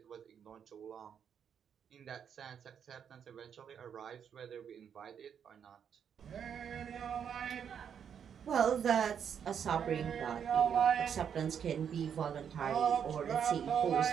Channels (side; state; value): left; quieter; 8.0 dB